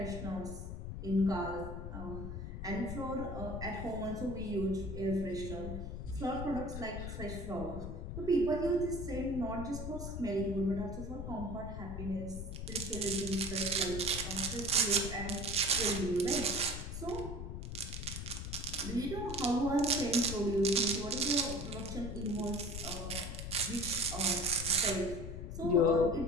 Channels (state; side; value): noise; left; rumble, 6 dB below the sound